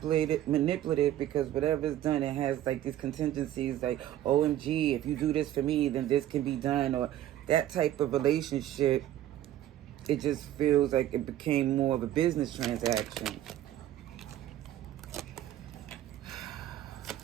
because whatever's done, it has like these contingencies, like, OMG, if you do this for me, then this can be done, or that type of relationship. It just feels like it became more of a business transaction.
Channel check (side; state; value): left; quieter; 12.6 dB